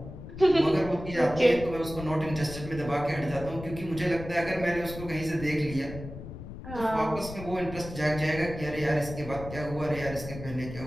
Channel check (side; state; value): left; noise; rumble, 11 dB below the sound